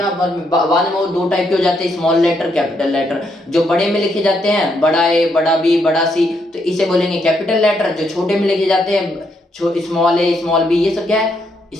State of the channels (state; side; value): normal; both; correlation 0.76